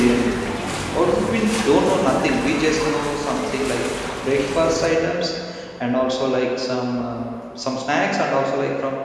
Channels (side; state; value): both; identical; correlation 1.00